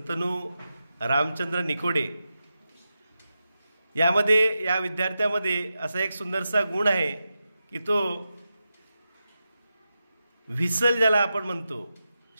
रामचंद्र निकोडे. या विद्यार्थ्यामध्ये असा एक सुंदरसा गुण आहे की तो व्हिसल, ज्याला आपण म्हणतो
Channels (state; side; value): inverted; both; correlation -0.90